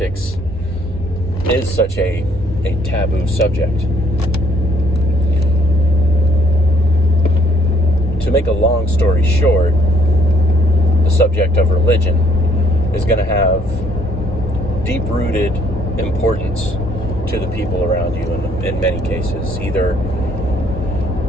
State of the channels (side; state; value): both; normal; correlation 0.65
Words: is such a taboo subject. To make a long story short, the subject of religion is going to have deep-rooted importance to the people around you in many cases. Either